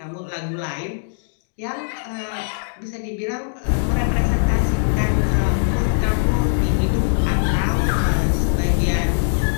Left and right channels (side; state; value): right; silent; digital silence